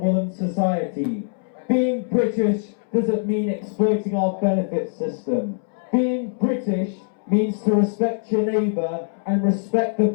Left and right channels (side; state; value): right; silent; 64 dB below the other